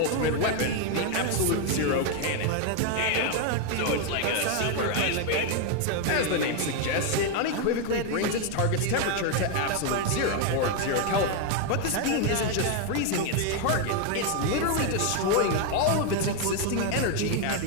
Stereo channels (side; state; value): both; different; correlation 0.01